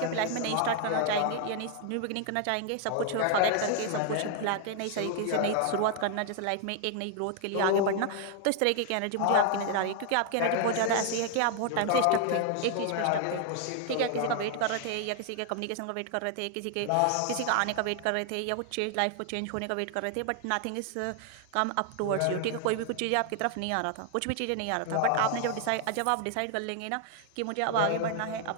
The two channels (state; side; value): different; both; correlation 0.00